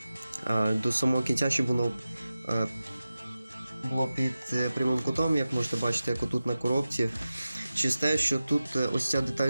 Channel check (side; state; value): both; inverted; correlation -0.94